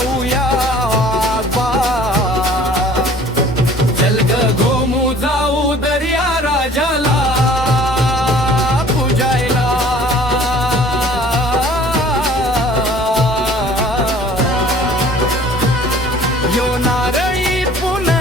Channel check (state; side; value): normal; both; correlation 0.51